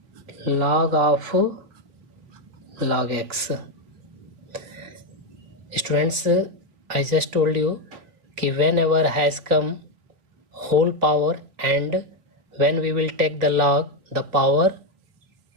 log of log x. Students, I just told you कि whenever has come whole power and when we will take the log, the power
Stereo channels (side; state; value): left; late; 3.2 ms